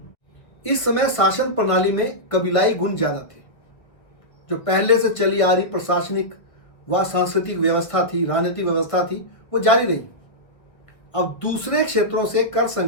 इस समय शासन प्रणाली में कबीलाई गुण ज्यादा थे। जो पहले से चली आ रही प्रशासनिक व सांस्कृतिक व्यवस्था थी, राजनीतिक व्यवस्था थी, वो जारी रही। अब दूसरे क्षेत्रों से कर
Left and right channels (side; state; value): right; late; 1.4 ms